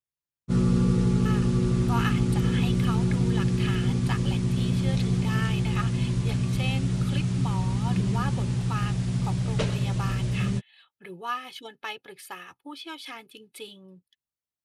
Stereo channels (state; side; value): identical; both; correlation 1.00